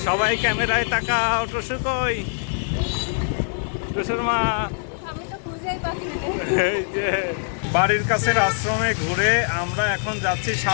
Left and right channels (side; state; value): right; silent; digital silence